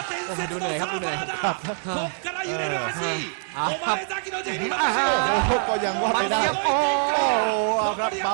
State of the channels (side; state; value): left; silent; digital silence